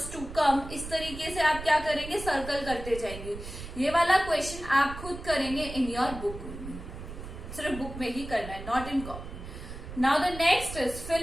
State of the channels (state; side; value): noise; right; rumble, 11 dB below the sound